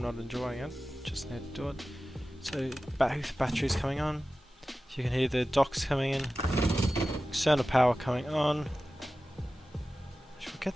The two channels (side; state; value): both; normal; correlation 0.95